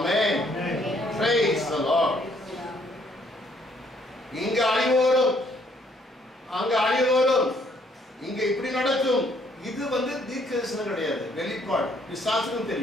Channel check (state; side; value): normal; both; correlation 0.66